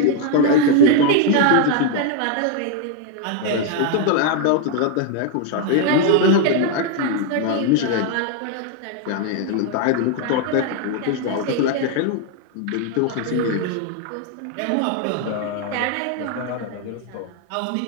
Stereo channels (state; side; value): different; both; correlation 0.00